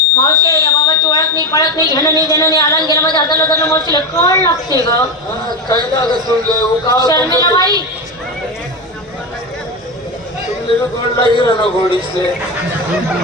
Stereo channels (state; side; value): normal; both; correlation 0.16